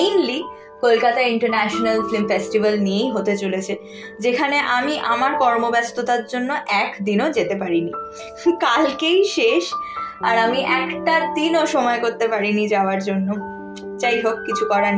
Kolkata international film festival নিয়েই হতে চলেছে, যেখানে আমি আমার কর্মব্যস্ততার জন্য একদিনও যেতে পারিনি। কালকেই শেষ, আর আমি একটা দিনও সময় করতে পারিনি যাওয়ার জন্য। যাই হোক, কিছু করার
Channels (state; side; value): identical; both; correlation 1.00